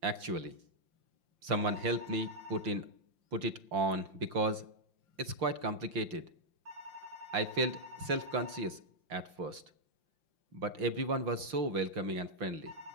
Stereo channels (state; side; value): late; left; 5.8 ms